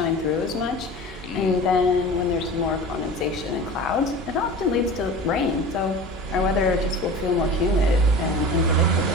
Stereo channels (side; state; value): both; normal; correlation 0.36